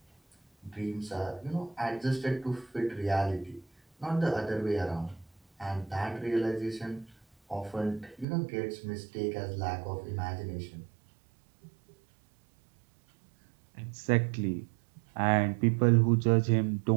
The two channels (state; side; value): drops out; left; at 8.2 s